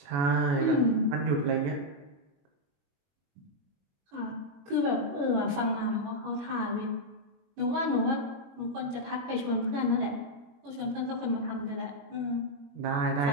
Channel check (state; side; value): late; left; 21 ms